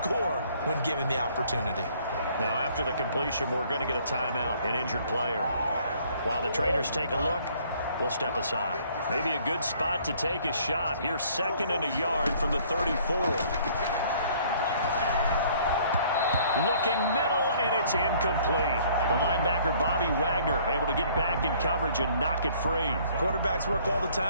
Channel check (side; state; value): both; inverted; correlation -0.59